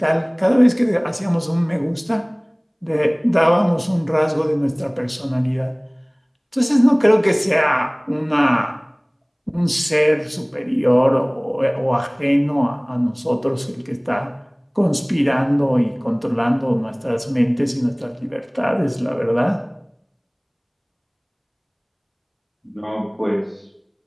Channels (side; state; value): both; identical; correlation 1.00